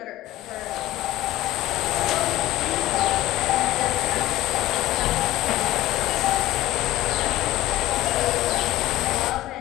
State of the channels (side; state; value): right; quieter; 15.9 dB